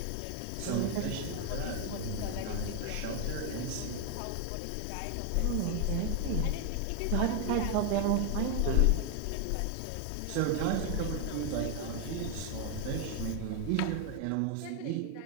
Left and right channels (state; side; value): different; both; correlation 0.01